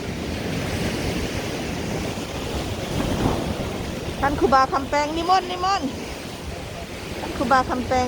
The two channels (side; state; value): both; identical; correlation 1.00